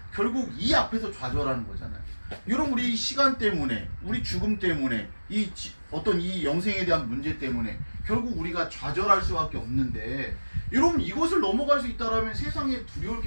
결국 이 앞에서 좌절하는 거잖아요. 여러분 우리 시간 때문에 우리 죽음 때문에 어떤 이 영생에 대한 문제 때문에 결국 우리가 좌절할 수밖에 없는데 여러분 이것을 넘어갈 수 있다면 세상에 두려울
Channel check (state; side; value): inverted; both; correlation -1.00